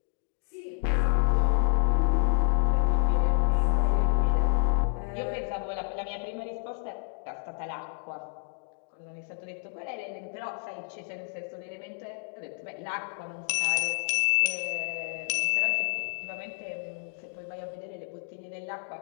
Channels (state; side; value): silent; right; 58 dB below the other